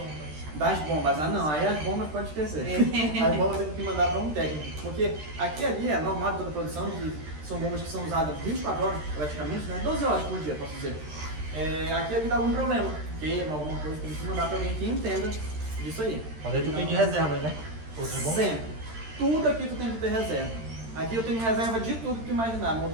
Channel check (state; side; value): late; left; 13 ms